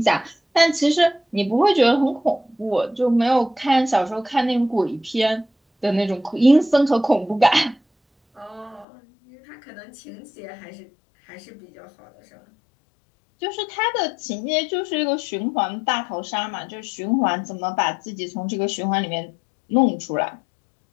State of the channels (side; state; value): right; drops out; at 8.8 s